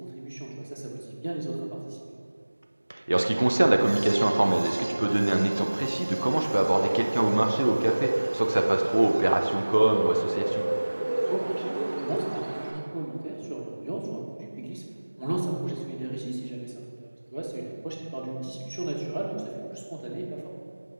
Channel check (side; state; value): both; inverted; correlation -1.00